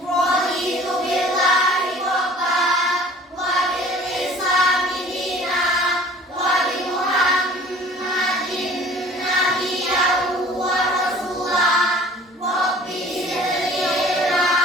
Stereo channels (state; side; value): normal; both; correlation 0.49